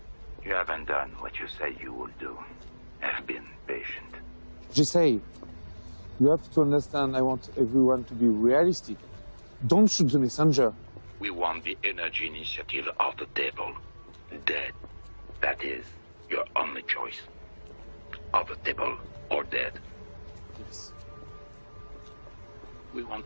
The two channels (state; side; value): inverted; both; correlation -1.00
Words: You haven't done what you said you would do. Have been patient. Just say, you have to understand I want everyone to be realistic. Don't shoot the messenger. We want the energy initiative off the table. Dead. That is your only choice. Off the table or dead. Yes. We